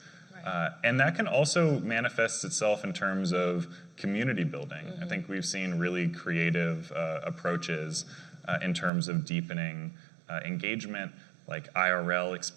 Right. And that can also manifest itself in terms of community building. I think we've seen really creative approaches in terms of deepening engagement, like IRL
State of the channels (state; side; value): drops out; left; at 8.9 s